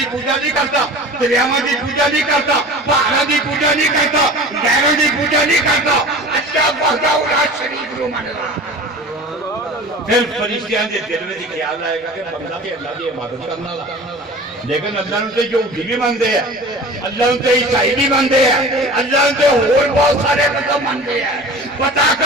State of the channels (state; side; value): normal; both; correlation 0.38